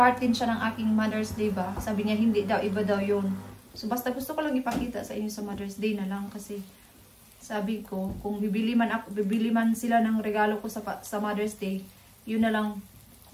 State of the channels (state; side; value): identical; both; correlation 1.00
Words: din siya ng aking Mother's Day ba. Sabi niya, hindi daw, iba daw yun. So basta gusto ko lang ipakita sa inyo sa Mother's Day na lang kasi sabi ko, kung bibili man sila ng regalo ko sa Mother's Day, yun na lang